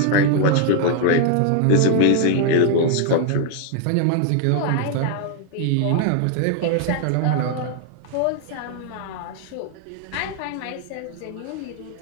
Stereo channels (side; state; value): both; different; correlation 0.00